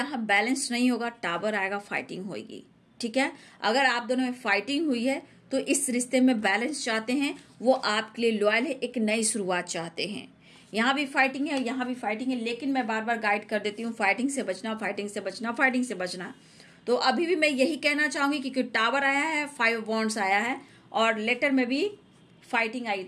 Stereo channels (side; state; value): both; identical; correlation 1.00